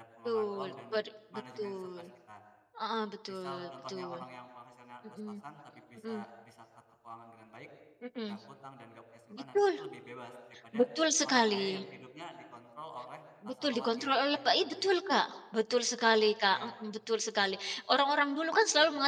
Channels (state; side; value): identical; both; correlation 1.00